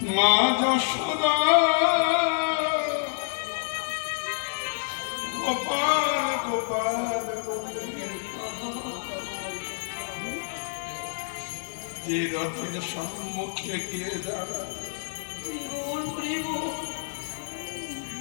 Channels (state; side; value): silent; right; digital silence